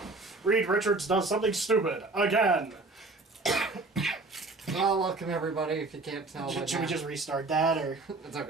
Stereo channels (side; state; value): left; quieter; 3.3 dB